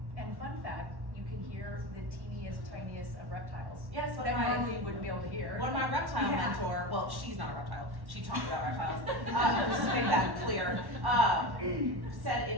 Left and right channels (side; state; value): left; late; 1.1 ms